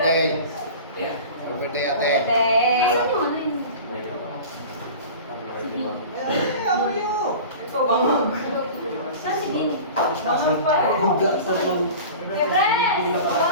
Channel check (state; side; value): inverted; both; correlation -0.37